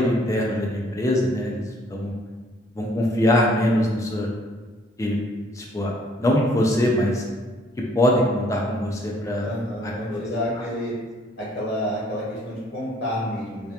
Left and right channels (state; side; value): normal; both; correlation 0.62